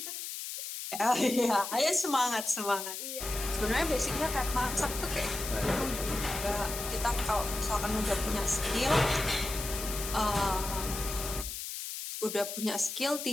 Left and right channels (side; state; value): left; noise; hiss, 6 dB below the sound